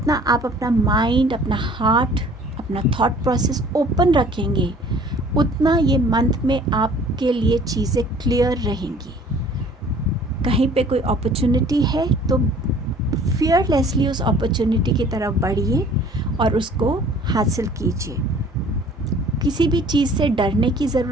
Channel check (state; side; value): normal; both; correlation 0.52